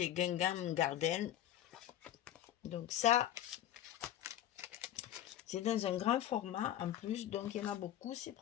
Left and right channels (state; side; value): quieter; right; 12.1 dB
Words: et Gingham Garden. Donc, ça, c'est dans un grand format en plus, donc il y en a beaucoup, c'est